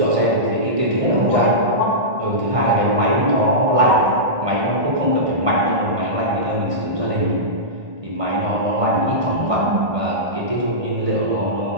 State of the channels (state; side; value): late; left; 1.6 ms